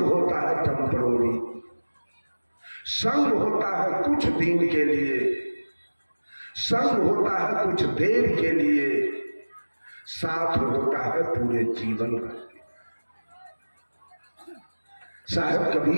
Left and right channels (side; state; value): both; inverted; correlation -1.00